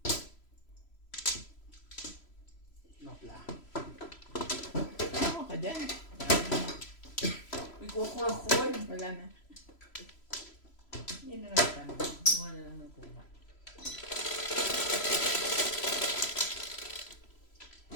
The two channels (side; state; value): right; late; 3.0 ms